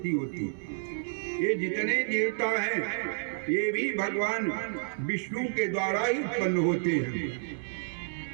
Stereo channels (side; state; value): left; silent; digital silence